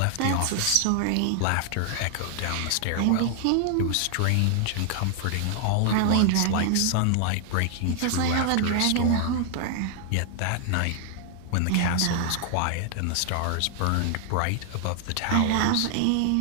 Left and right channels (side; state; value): both; different; correlation 0.00